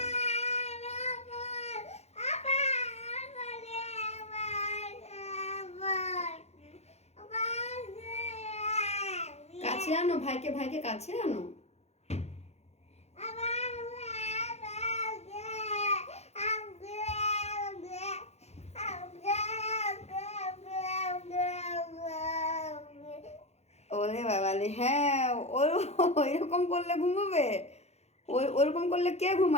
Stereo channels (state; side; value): late; right; 0.31 ms